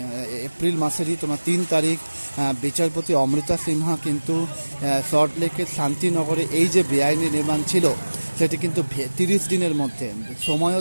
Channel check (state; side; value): inverted; both; correlation -1.00